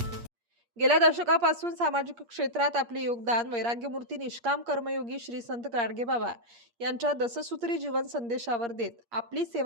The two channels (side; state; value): left; late; 8.5 ms